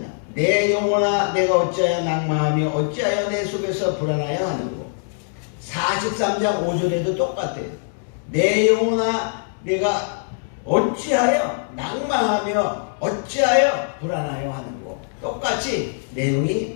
내 영혼아 내가 어찌하여 낭망하며 어찌하여 내 속에서 불안하여 하는고. 43장 5절에도 똑같아요. 내 영혼아 내가 어찌하여 낭망하며 어찌하여 불안하여 하는고. 똑같이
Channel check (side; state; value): right; silent; digital silence